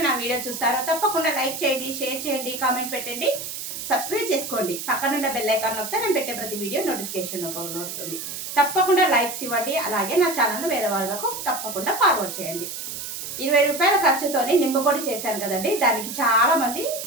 నా వీడియో చూస్తారో తప్పకుండా లైక్ చేయండి, షేర్ చేయండి, కామెంట్ పెట్టండి, సబ్స్క్రైబ్ చేసుకోండి. పక్కనున్న బెల్ ఐకాన్ నొక్కితే నేను పెట్టే ప్రతి వీడియో నోటిఫికేషన్ రూపంలో వస్తుంది. తప్పకుండా లైక్స్ ఇవ్వండి. అలాగే నా ఛానల్ వేరే వాళ్ళకు తప్పకుండా ఫార్వర్డ్ చేయండి. 20 రూపాయల ఖర్చుతోని నిమ్మపొడి చేశాను కదండి. దానికి చాలా మంది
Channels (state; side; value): noise; right; hiss, 7 dB below the sound